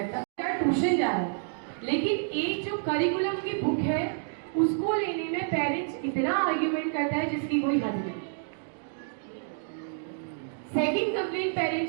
ट्यूशन जा रहा है। लेकिन एक जो करिकुलम की बुक है उसको लेने में पेरेंट्स इतना आर्ग्यूमेंट करता है जिसकी कोई हद नहीं। सेकंड कंप्लेंट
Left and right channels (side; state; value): left; silent; digital silence